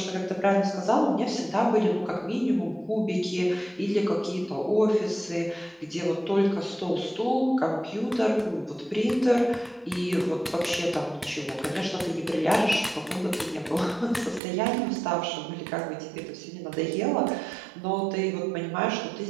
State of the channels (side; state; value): left; drops out; at 14.4 s